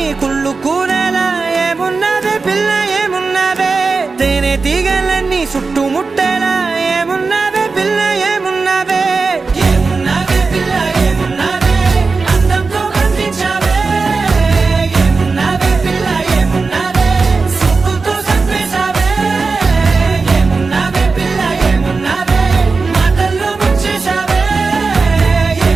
కుళ్ళు కూరలా ఏమున్నావే పిల్ల ఏమున్నావే తేనె తీగలన్నీ చుట్టుముట్టేలా ఏమున్నావే పిల్ల ఏమున్నావే ఏమున్నావే పిల్ల ఏమున్నావే అందంతో కనిపించావే ఏమున్నావే పిల్ల ఏమున్నావే సుక్కుతో సంపేశావే ఏమున్నావే పిల్ల ఏమున్నావే మాటల్లో ముంచేశావే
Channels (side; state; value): left; quieter; 4.3 dB